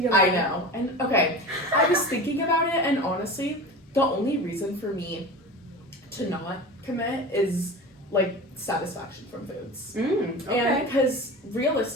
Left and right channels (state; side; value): normal; both; correlation 0.32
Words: your life. I know. And okay, I was thinking about it, and honestly, the only reason for me to not commit is like satisfaction from foods. Okay. And because